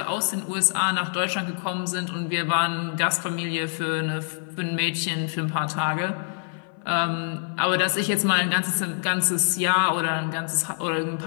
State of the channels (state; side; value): silent; right; 55 dB below the other